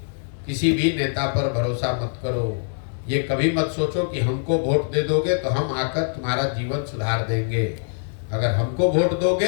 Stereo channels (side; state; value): right; silent; digital silence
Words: किसी भी नेता पर भरोसा मत करो। ये कभी मत सोचो कि हमको वोट दे दोगे तो हम आकर तुम्हारा जीवन सुधार देंगे। अगर हमको वोट